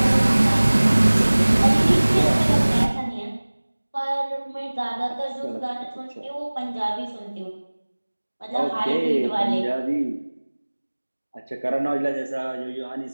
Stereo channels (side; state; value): both; inverted; correlation -1.00